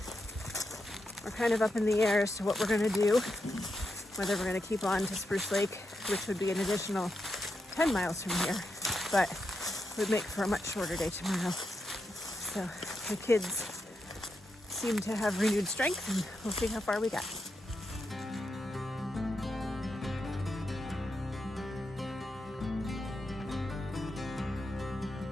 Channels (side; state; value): both; normal; correlation 0.85